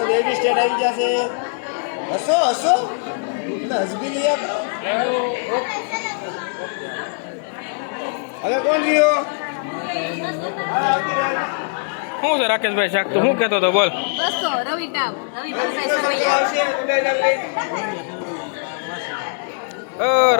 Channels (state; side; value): silent; right; 65 dB below the other